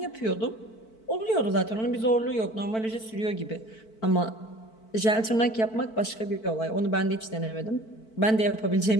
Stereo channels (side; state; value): right; late; 4.5 ms